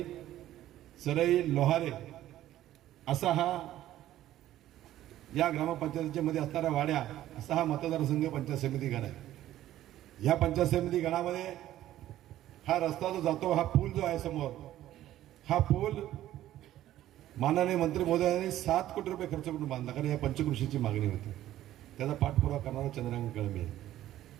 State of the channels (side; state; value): left; quieter; 13.5 dB